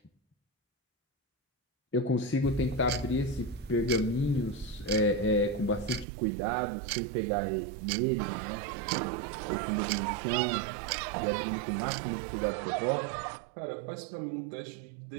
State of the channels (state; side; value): drops out; left; at 6.1 s